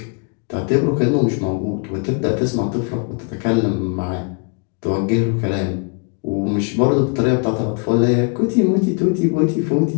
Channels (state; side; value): quieter; right; 36.8 dB